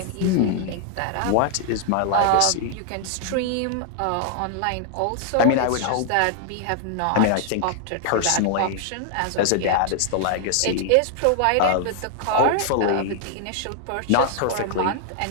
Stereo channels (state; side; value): different; both; correlation -0.01